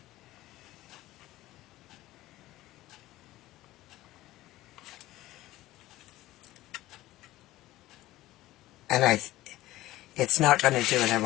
And it's not going to do what I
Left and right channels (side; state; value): right; quieter; 16.5 dB